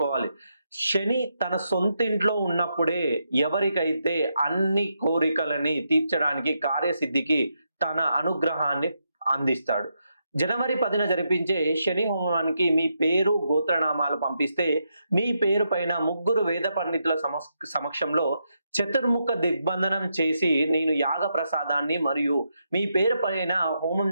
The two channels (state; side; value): inverted; both; correlation -0.82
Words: శని తన సొంతింట్లో ఉన్నప్పుడే ఎవరికైతే అన్ని కోరికలని తీర్చడానికి, కార్యసిద్ధికి తన అనుగ్రహాన్ని అందిస్తాడు. జనవరి 10న జరిపించే శని హోమానికి మీ పేరు, గోత్రనామాలు పంపిస్తే, మీ పేరు పైన ముగ్గురు వేద పండితుల సమక్షంలో చతుర్ముఖ దిగ్బంధనం చేసి, నేను యాగ ప్రసాదాన్ని మరియు మీ పేరు పైన హోమం